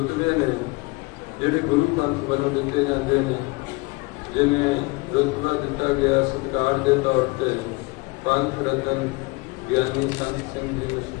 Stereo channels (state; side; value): quieter; right; 26.1 dB